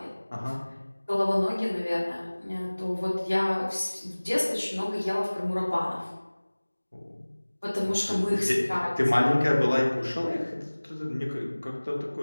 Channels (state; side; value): inverted; both; correlation -1.00